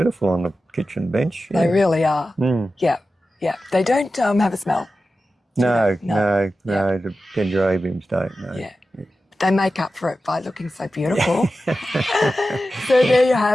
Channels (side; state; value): both; normal; correlation 0.93